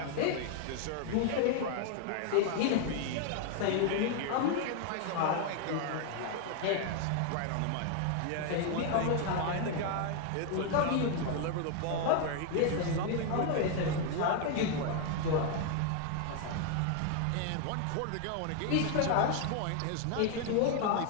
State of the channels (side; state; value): both; different; correlation 0.00